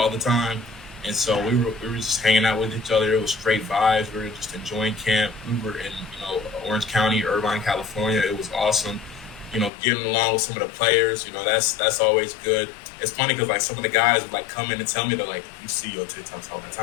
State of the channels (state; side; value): drops out; right; at 9.7 s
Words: the time. And so we were just hanging out with each other. It was straight vibes. We were just enjoying camp. We were in Orange County, Irvine, California. It was awesome. Getting along with some of the players. That's always good. It's funny because like some of the guys would like come in and tell me they're like, you see your TikToks all the